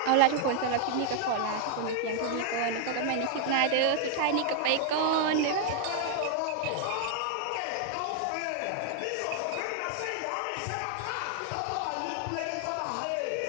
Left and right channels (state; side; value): different; both; correlation 0.00